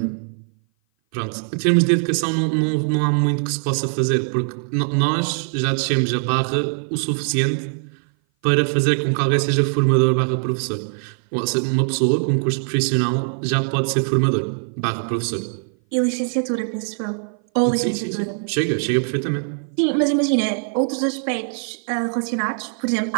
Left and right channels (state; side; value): silent; left; 57 dB below the other